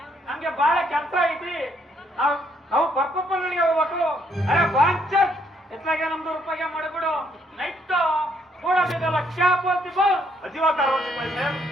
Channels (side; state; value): both; normal; correlation 0.70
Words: ನಮ್ಗೆ ಬಹಳ ಕೆಲಸ ಐತಿ, ನಾವು ಪರ್ಪಪ್ಪನಿಗೆ ಹೋಗ್ಬೇಕು. ಅರೆ ಬಾಂಚತ್ ಎತ್ಲಾಗೆ 100 ರೂಪಾಯಿಗೆ ಮಾಡಿಬಿಡು ನೈಟ್ ಕೊಡದಿದಲ್ಲ ಕ್ಯಾ बोलती बोल. अजीब कारवा सिपाही साहब,